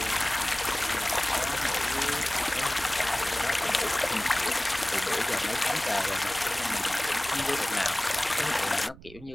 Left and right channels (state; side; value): noise; right; rumble, 20 dB below the sound